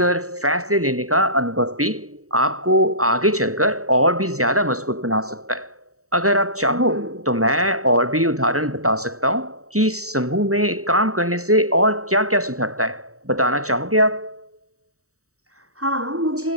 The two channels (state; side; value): late; left; 0.65 ms